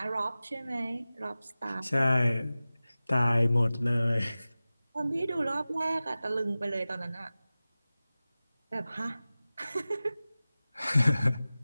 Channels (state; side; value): inverted; both; correlation -0.97